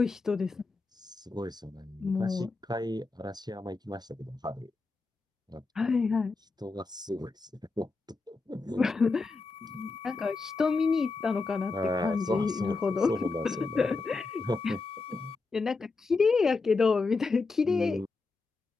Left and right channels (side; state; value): right; quieter; 3.9 dB